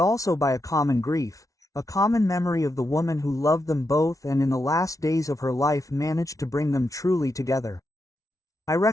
also by a common grief, a common memory of the woman who loved them both and in the last days of her life managed to bring them truly together. I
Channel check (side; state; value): right; late; 0.17 ms